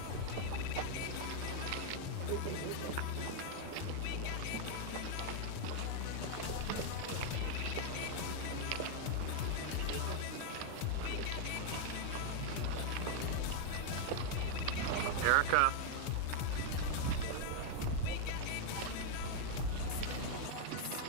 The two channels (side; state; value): both; different; correlation 0.00